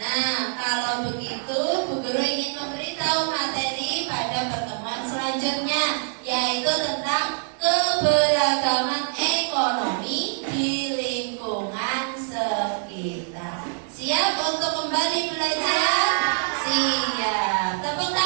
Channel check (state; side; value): silent; left; 62 dB below the other